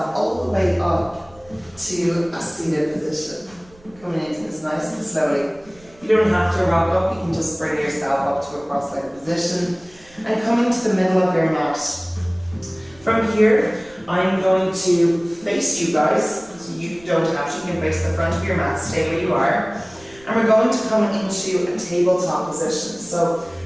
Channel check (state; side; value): noise; right; rumble, 26 dB below the sound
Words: all the way up to a seated position. Coming into this nice and slowly. You don't have to rock up, you can just bring yourself up to a cross-legged position and coming to the middle of your mat. From here, I'm going to face you guys, so you don't have to, you can face the front of your mat, stay where you are. And we're going to come into a tabletop position. So